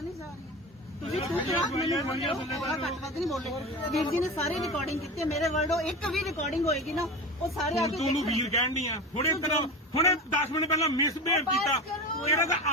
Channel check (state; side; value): normal; both; correlation 0.27